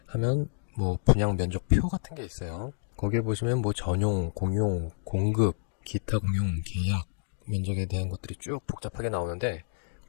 하면 뭐 분양 면적표 같은 게 있어요. 거기에 보시면 뭐 전용, 공용, 공급, 기타 공용, 계약, 면적에 대한 것들이 쭉 복잡하게 나오는데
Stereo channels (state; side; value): silent; right; digital silence